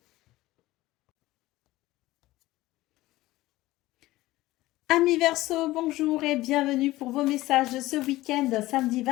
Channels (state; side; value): quieter; right; 17.6 dB